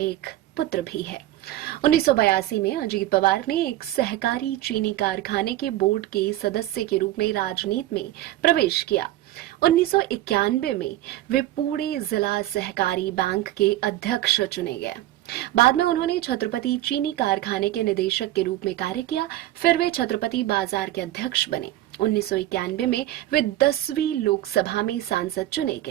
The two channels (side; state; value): left; quieter; 14.7 dB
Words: पुत्र भी है। 1982 में अजीत पवार ने एक सहकारी चीनी कारखाने के बोर्ड के सदस्य के रूप में राजनीति में प्रवेश किया। 1991 में वे पुणे जिला सहकारी बैंक के अध्यक्ष चुने गए। बाद में उन्होंने छत्रपति चीनी कारखाने के निदेशक के रूप में कार्य किया। फिर वे छत्रपति बाजार के अध्यक्ष बने। 1991 में वे 10वीं लोकसभा में सांसद चुने